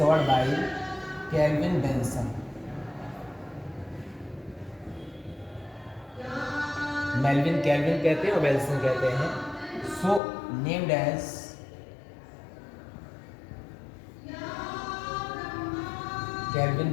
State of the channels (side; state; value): right; drops out; at 10.2 s